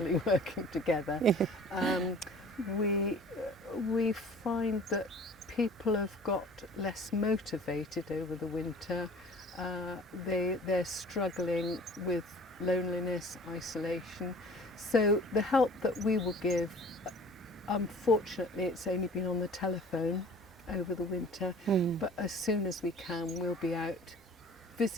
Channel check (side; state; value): both; normal; correlation 0.47